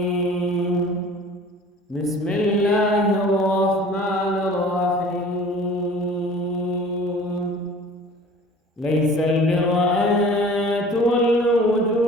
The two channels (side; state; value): both; normal; correlation 0.46